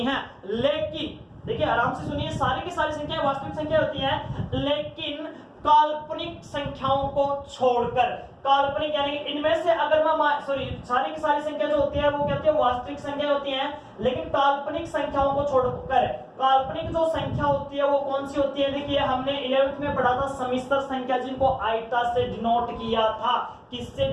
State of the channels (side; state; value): both; identical; correlation 1.00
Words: हैं, लेकिन देखिए आराम से सुनिए, सारी की सारी संख्याएं वास्तविक संख्या होती हैं, लेकिन काल्पनिक संख्याओं को छोड़कर, काल्पनिक यानी इनमें से अगर मैं सारी की सारी संख्या जो होती है वो क्या होती है, वास्तविक संख्या होती है, लेकिन काल्पनिक संख्याओं को छोड़कर काल्पनिक जो संख्या होती है वो कौन सी होती है। देखिए हमने 11th में पढ़ा था समिश्र संख्या, जिनको आइटा से डिनोट किया था। किससे